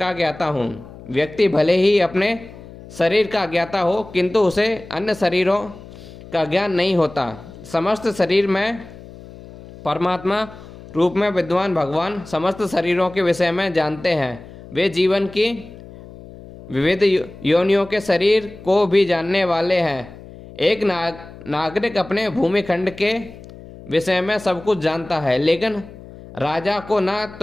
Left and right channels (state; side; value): noise; left; hum, 17 dB below the sound